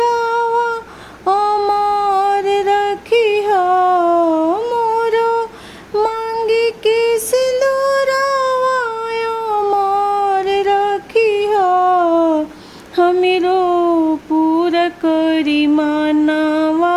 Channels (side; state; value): both; identical; correlation 1.00